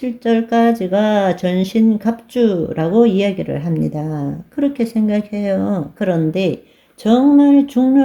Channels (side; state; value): both; identical; correlation 1.00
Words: 전신갑주라고 이야기를 합니다. 그렇게 생각해요. 그런데 정말